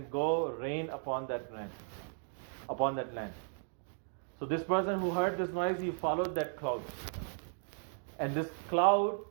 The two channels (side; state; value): left; silent; 54 dB below the other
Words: go rain upon that land. So this person who heard this noise, he followed that cloud. And this cloud